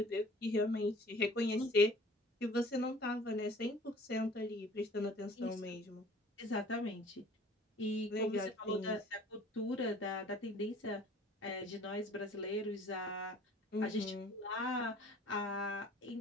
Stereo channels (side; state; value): both; normal; correlation 0.50